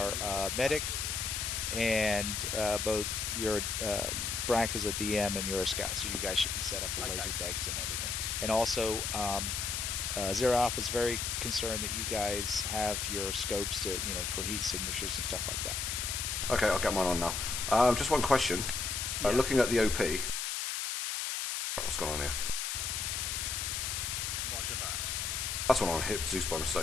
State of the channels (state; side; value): noise; left; hiss, 1 dB below the sound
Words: medic, and both your Brack is a DM and you're a scout. So you guys should be set up with laser degs and everything. And also, Zero Alpha is very concerned that you guys have your scopes to, for heat signatures and stuff like that. Okay, I'll get mine on now. Just one question. Looking at the OP. What's going on here? Roger that. That's one on hit Zeus by mistake.